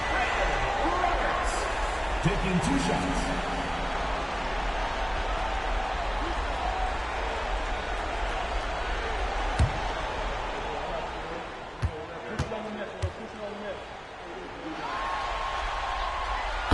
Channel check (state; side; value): identical; both; correlation 1.00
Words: Taking 2 shots.